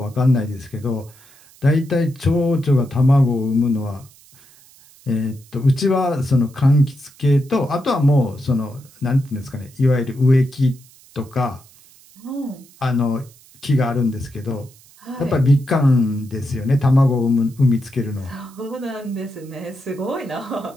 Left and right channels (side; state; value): right; noise; hiss, 26 dB below the sound